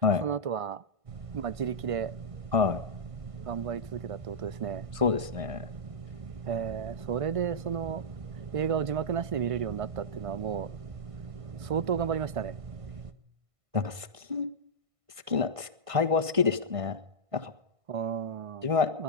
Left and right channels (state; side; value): late; left; 1.5 ms